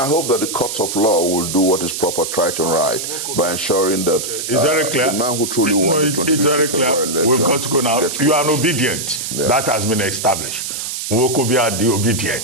hope that the courts of law will do what is proper, right and right, by ensuring that It's very clear. the man who truly won the 25th it's very clear. February We've got to go now. gets You are released. obedient. Yeah. That has been established. Wokobia the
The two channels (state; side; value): noise; right; hiss, 5 dB below the sound